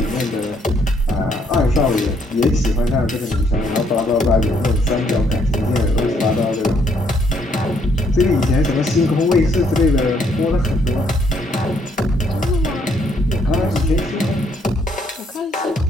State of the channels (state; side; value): normal; both; correlation 0.70